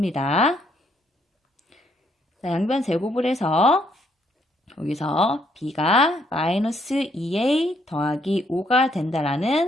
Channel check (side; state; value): both; normal; correlation 0.71